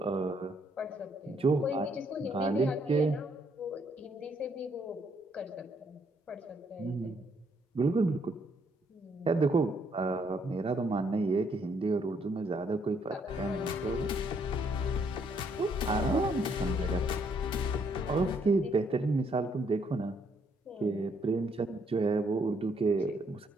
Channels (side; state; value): both; normal; correlation 0.70